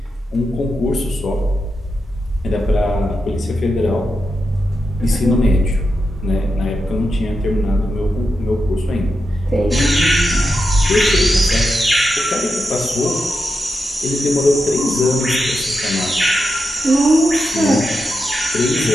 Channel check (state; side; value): normal; both; correlation 0.87